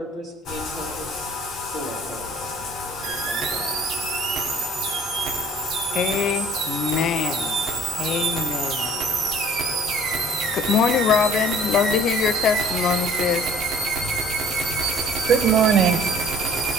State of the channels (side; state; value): both; normal; correlation 0.52